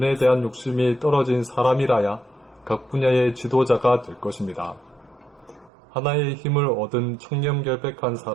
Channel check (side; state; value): left; drops out; at 5.7 s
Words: 대한 욕심이 떨어진 사람이라야 각 분야의 지도자가 될 것입니다. 하나의 힘을 얻은 청렴결백한